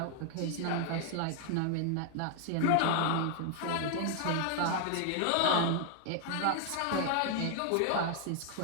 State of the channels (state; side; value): different; both; correlation 0.00